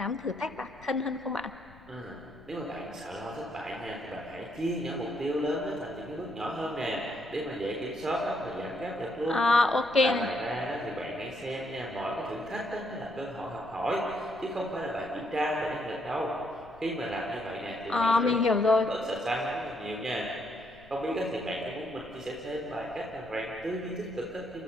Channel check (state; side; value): noise; left; rumble, 23 dB below the sound